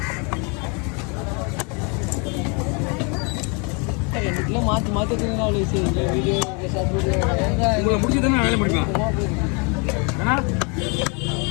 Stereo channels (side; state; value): right; quieter; 33.9 dB